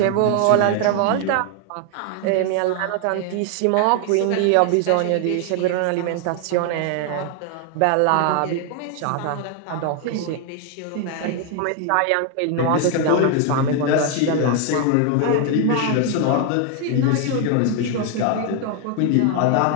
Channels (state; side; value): different; both; correlation 0.00